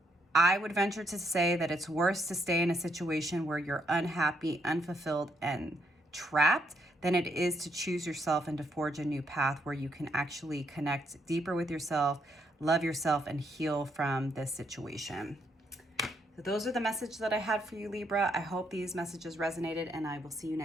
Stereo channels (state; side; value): normal; both; correlation 0.75